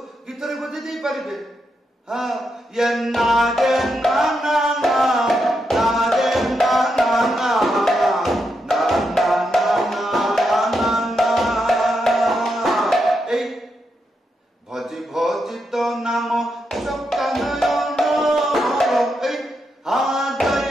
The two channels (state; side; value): normal; both; correlation 0.83